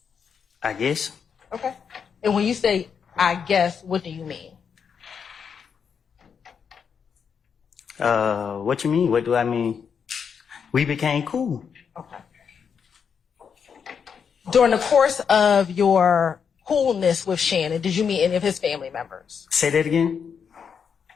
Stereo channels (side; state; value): right; quieter; 6.8 dB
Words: I guess. Okay. And when you say, I guess, what do you mean? What you mean? What do I mean? We became cool. Okay. During the course of your coolness with Shannon, did you meet any of his family members? Say that again.